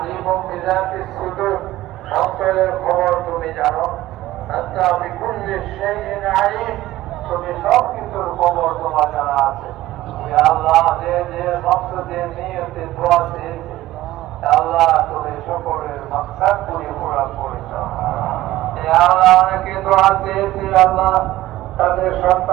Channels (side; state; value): left; quieter; 15.8 dB